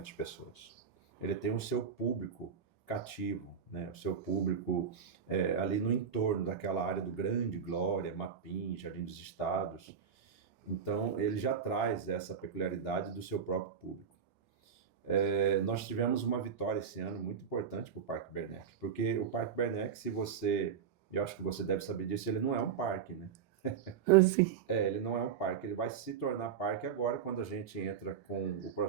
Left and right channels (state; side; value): quieter; left; 7.2 dB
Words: pessoas. Ele tem o seu público cativo, né? O seu público ali no entorno daquela área do Grande Glória, Mapim, Jardim dos Estados. Então, ele já traz essa peculiaridade do seu próprio público. Nós tivemos uma vitória esse ano muito importante para o Parque Bernec, porque o Parque Bernec, eu acho que você deve saber disso, ele não é um parque, né? Sim. Ele não é um parque, ele vai se tornar parque agora quando a gente entra com o